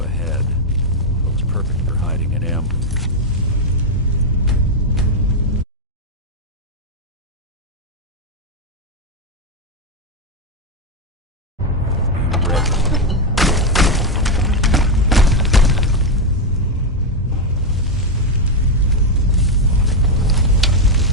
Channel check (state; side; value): normal; both; correlation 0.04